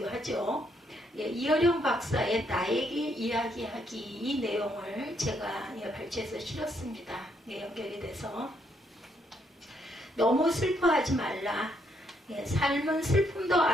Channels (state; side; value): normal; both; correlation 0.74